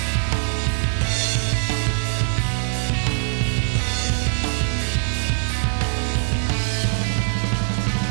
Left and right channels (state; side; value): silent; left; digital silence